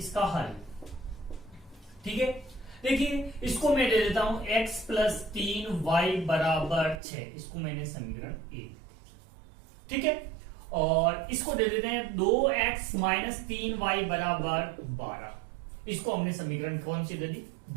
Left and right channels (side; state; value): left; drops out; at 7.0 s